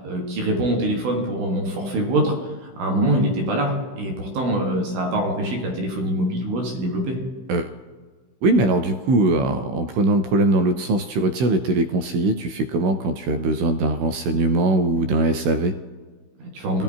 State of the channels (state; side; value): late; left; 16 ms